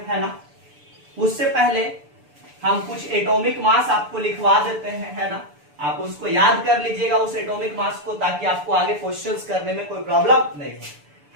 है ना। उससे पहले हम कुछ एटॉमिक मास आपको लिखवा देते हैं, है ना, आप उसको याद कर लीजिएगा उस एटॉमिक मास को, ताकि आपको आगे क्वेश्चंस करने में कोई प्रॉब्लम नहीं हो।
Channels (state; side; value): late; left; 6.9 ms